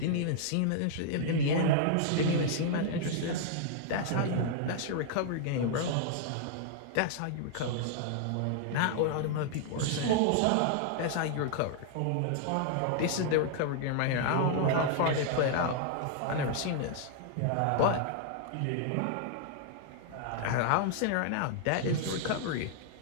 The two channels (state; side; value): different; both; correlation -0.01